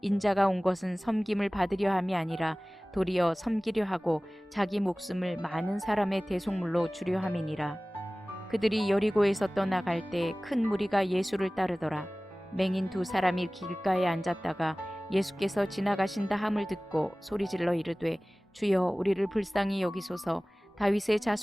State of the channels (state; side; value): normal; both; correlation 0.98